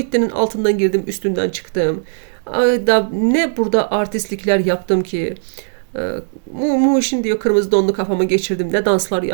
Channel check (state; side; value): silent; left; digital silence